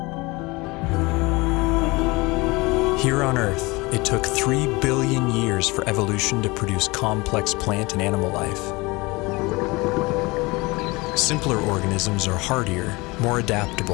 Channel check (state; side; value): quieter; right; 24.0 dB